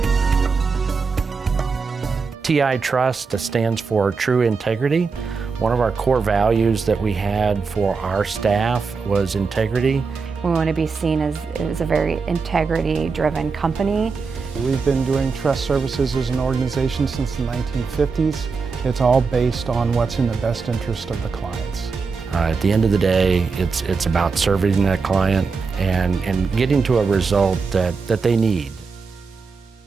TI Trust stands for True Integrity. One of our core values that we had for our staff was integrity. We want to be seen as a very integrity-driven company. We've been doing trust services as an organization since the 1950s. It's all based on what's in the best interest of the clients. At the end of the day, it's about serving that client and getting to a result that they need.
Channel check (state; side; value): quieter; left; 4.9 dB